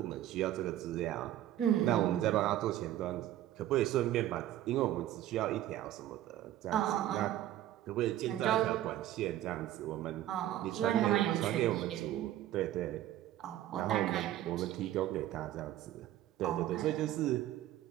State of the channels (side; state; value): left; quieter; 13.2 dB